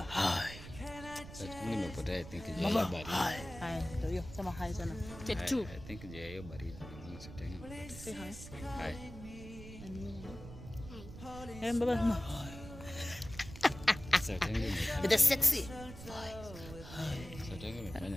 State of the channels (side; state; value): right; noise; rumble, 13 dB below the sound